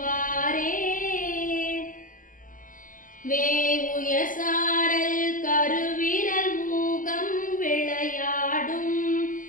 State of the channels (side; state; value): right; late; 0.39 ms